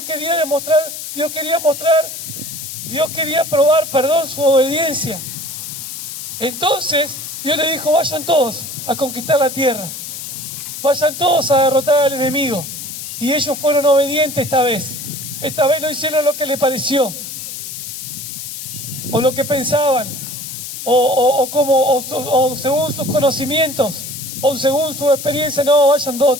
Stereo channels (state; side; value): noise; left; hiss, 8 dB below the sound